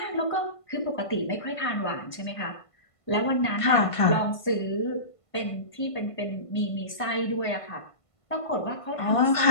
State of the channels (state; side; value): late; right; 1.5 ms